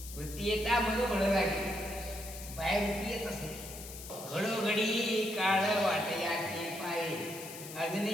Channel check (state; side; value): noise; left; hiss, 12 dB below the sound